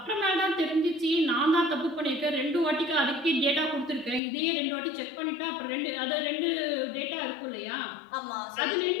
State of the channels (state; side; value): drops out; right; at 4.2 s